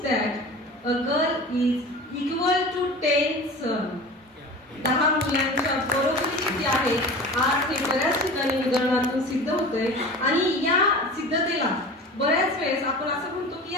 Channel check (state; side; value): normal; both; correlation 0.36